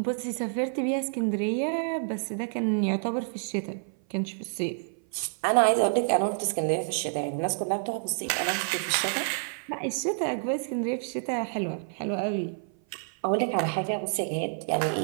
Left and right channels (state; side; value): silent; left; 55 dB below the other